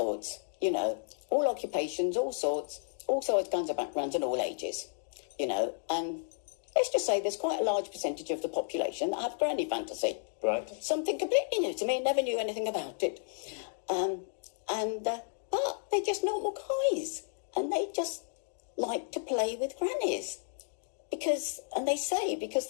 you know, all occupations, all sorts kinds of backgrounds and all ages, you know. And let's just say there's quite a large percentage of the population that have granny fantasy. Right. Something completely new to me, never knew anything about it. But they're just normal guys. And they just like to play with grannies because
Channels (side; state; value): right; silent; digital silence